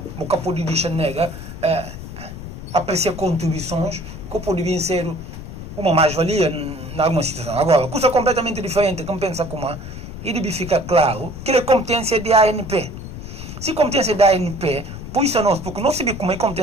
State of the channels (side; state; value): left; noise; rumble, 10 dB below the sound